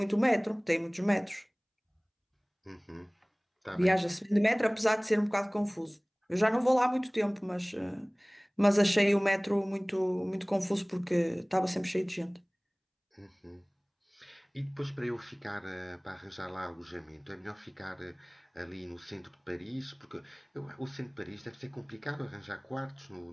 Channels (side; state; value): both; identical; correlation 1.00